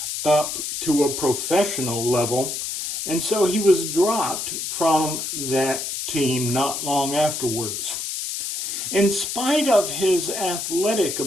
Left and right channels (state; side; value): noise; left; hiss, 4 dB below the sound